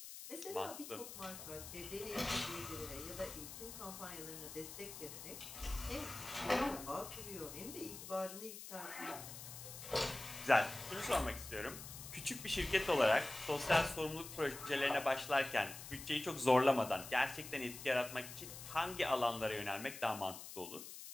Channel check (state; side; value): noise; left; hiss, 11 dB below the sound